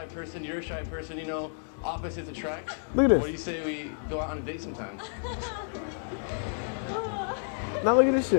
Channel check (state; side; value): silent; right; digital silence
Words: person. You're a shy person. You know, opposites attract. Look at this. What do you say we go out on a date sometime? Now look at this